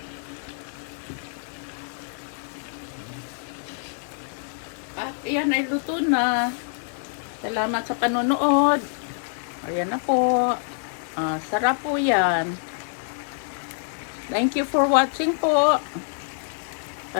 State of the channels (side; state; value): right; silent; 59 dB below the other